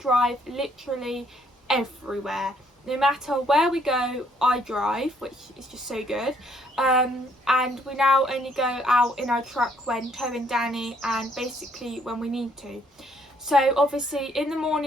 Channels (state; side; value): normal; both; correlation 0.67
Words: literally everywhere. No matter where we go, I drive, which is just so good. And we now only go out in our truck when towing Danny, and basically when we need to. So obviously in the